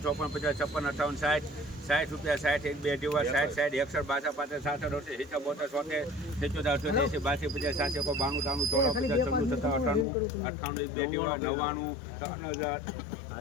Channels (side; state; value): right; drops out; at 10.1 s